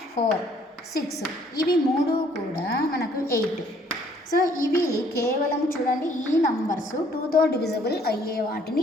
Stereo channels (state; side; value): normal; both; correlation 0.62